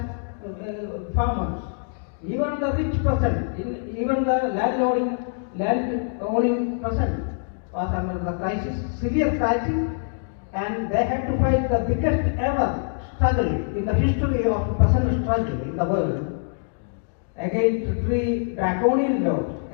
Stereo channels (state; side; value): silent; right; digital silence